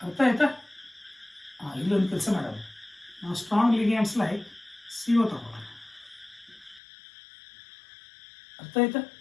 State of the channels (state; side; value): drops out; right; at 6.8 s